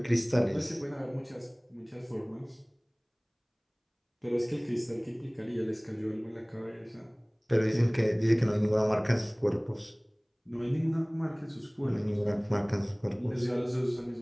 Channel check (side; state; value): both; identical; correlation 1.00